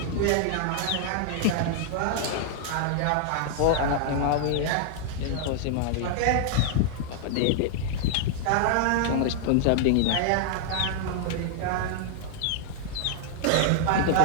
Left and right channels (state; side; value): different; both; correlation -0.01